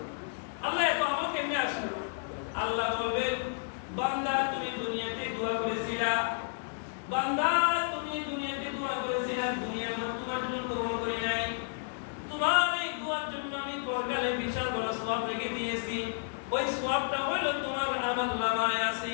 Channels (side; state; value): right; silent; digital silence